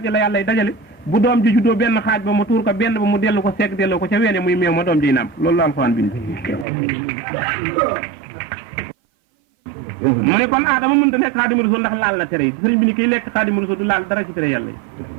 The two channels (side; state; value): left; drops out; at 6.7 s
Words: ji la yàlla dajale bu doom ji juddoo benn xaaj ba mu tuur ko benn ba mu dellu ko segg delloo ko ca weene muy meew ma doom jiy nàmp loolu la alxuraan bind mu ne kon aadama mënta nekk xaadimu rasul ndax laal la tere yi sëriñ bi ni kiy lekk xaadimu rasul du laal dara ci tere yàlla yi